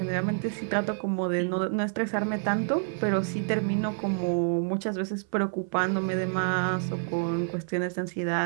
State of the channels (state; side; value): silent; left; 59 dB below the other